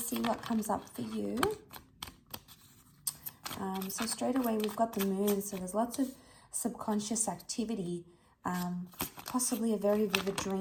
what comes up for you. So straight away we've got the moon, so there's lots of subconscious activity, possibly a very vivid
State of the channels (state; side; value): identical; both; correlation 1.00